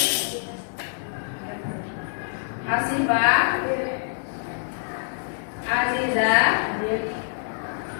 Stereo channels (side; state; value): right; silent; digital silence